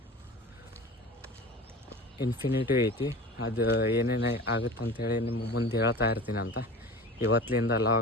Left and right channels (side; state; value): both; normal; correlation 0.35